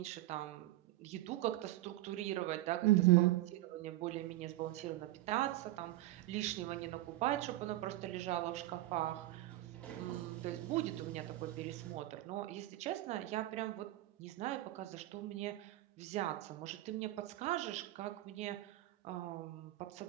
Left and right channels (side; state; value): left; quieter; 16.5 dB